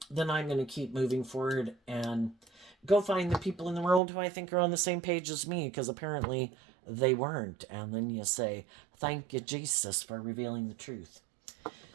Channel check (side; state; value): left; drops out; at 4.0 s